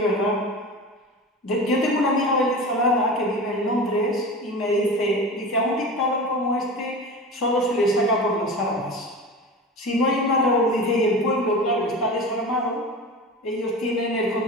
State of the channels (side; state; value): both; normal; correlation 0.31